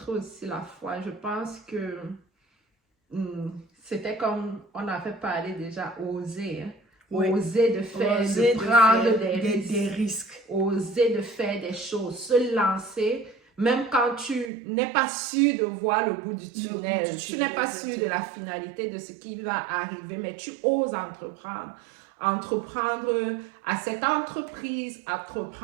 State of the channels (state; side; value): drops out; left; at 14.5 s